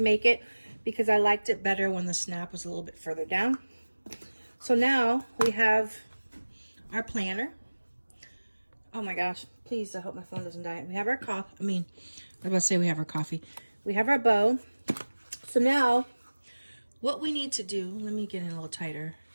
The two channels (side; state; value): both; inverted; correlation -1.00